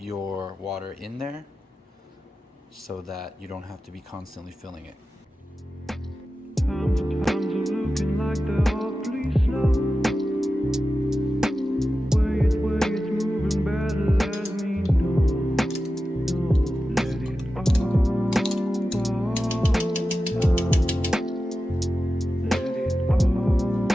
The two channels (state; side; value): normal; both; correlation 0.93